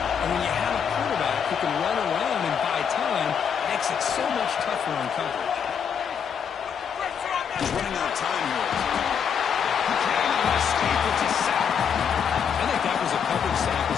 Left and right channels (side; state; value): right; quieter; 7.4 dB